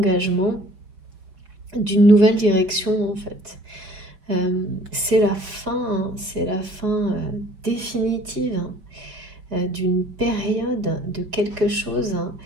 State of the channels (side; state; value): left; late; 5.1 ms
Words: d'une nouvelle direction, en fait. C'est la fin, hein, c'est la fin définitive d'une période, de quelque chose. Hein.